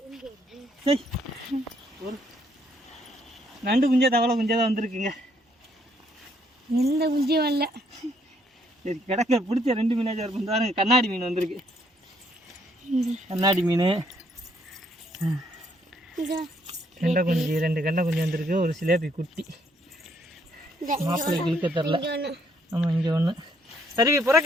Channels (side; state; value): both; normal; correlation 0.69